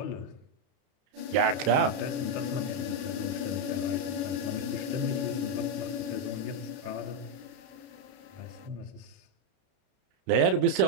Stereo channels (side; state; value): left; late; 32 ms